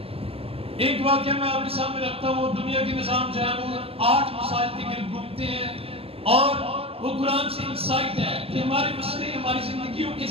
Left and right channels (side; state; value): left; late; 0.28 ms